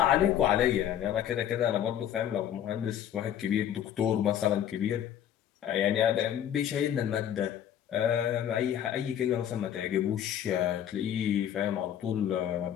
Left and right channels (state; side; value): quieter; right; 10.3 dB